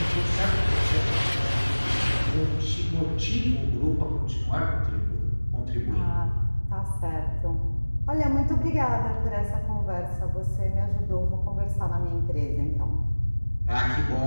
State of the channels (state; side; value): inverted; both; correlation -1.00